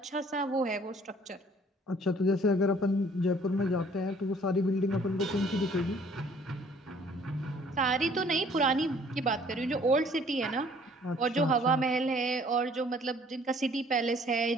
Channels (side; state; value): both; normal; correlation 0.57